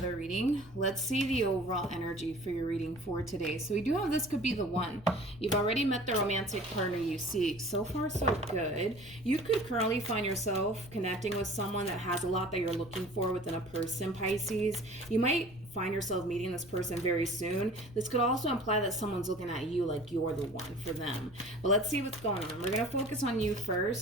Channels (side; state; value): left; noise; rumble, 20 dB below the sound